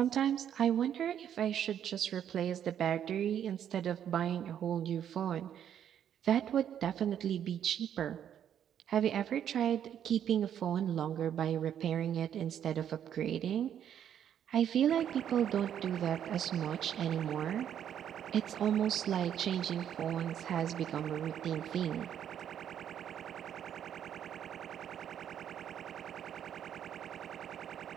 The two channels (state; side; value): quieter; left; 9.5 dB